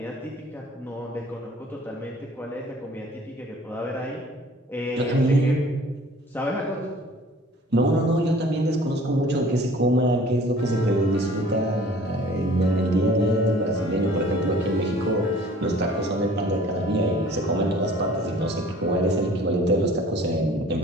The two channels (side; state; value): both; normal; correlation 0.50